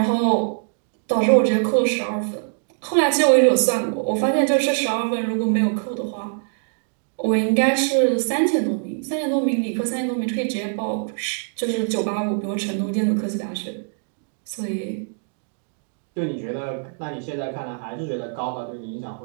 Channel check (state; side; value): silent; left; digital silence